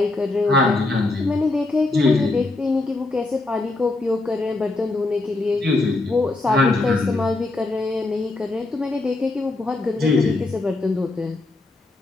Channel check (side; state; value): right; quieter; 3.1 dB